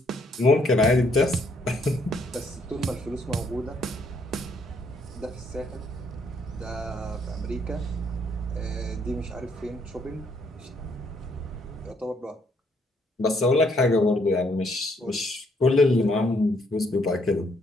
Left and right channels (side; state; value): both; normal; correlation 0.70